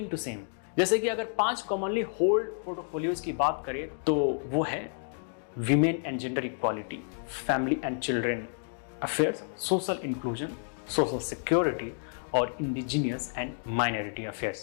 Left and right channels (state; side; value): silent; right; digital silence